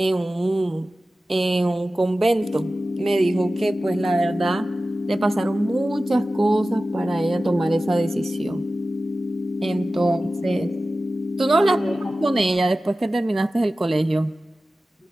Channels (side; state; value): both; normal; correlation 0.95